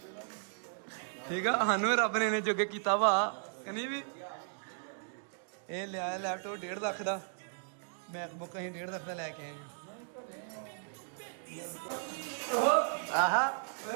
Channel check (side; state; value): left; silent; digital silence